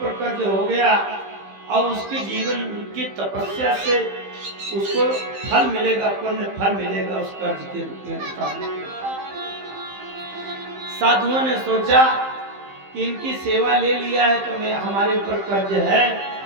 कर्ज हो गया, और उसके जीवन की तपस्या से उसको फल मिलेगा, पुण्य फल मिलेगा उस कर्ज के रूप में। साधुओं ने सोचा कि इनकी सेवा ले लिया है तो मैं हमारे ऊपर कर्ज है।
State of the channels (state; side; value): late; left; 15 ms